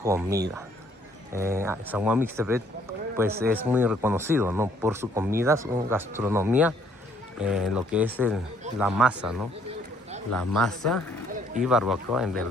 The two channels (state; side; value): normal; both; correlation 0.65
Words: San Juan Mixtepec pues es muy reconocido, ¿no? Por su comida, su gastronomía, lo que es la masa, ¿no? La masa y barbacoa, en